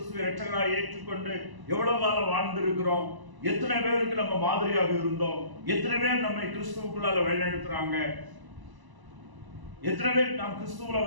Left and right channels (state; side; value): late; left; 1.0 ms